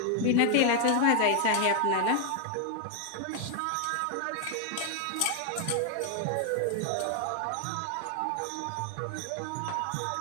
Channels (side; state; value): both; different; correlation 0.00